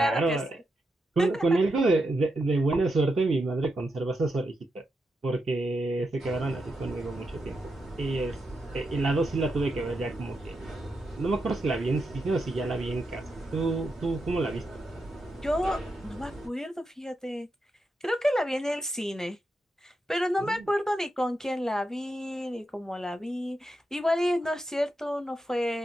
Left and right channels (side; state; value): both; normal; correlation 0.85